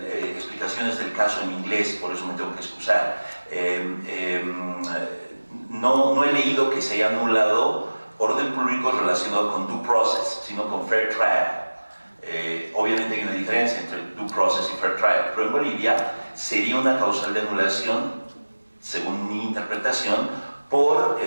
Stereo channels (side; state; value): both; inverted; correlation -1.00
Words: del caso en inglés, por eso me tengo que excusar. No he leído que se haya anulado orden público relacionado con due process, sino con fair trial. Obviamente hay una diferencia entre due process y fair trial, pero en Bolivia sería una causal de anulación, según mi interpretación, por